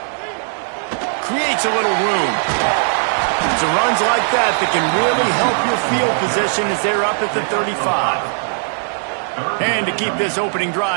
Creates a little room. It's runs like that that can really help your field position as they're up at the 35. And to keep this opening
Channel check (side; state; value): left; silent; 67 dB below the other